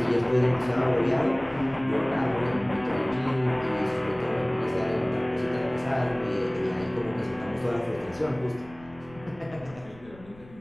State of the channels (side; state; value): left; noise; rumble, 22 dB below the sound